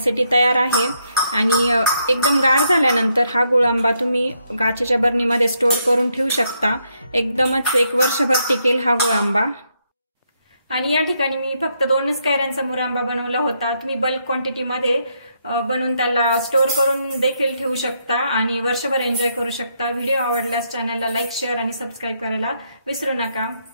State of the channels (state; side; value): inverted; both; correlation -0.77